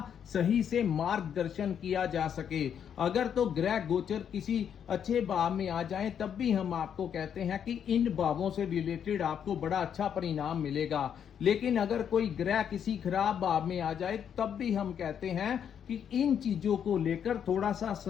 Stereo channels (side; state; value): right; quieter; 8.4 dB